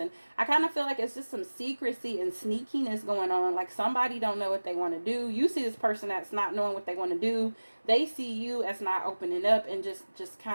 I kind of feel like it's just some secrecy and sneakiness going on. Like, somebody don't know what they want to do. You see this person that's not knowing what they want to do. They see you as not opening up and just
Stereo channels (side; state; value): both; inverted; correlation -1.00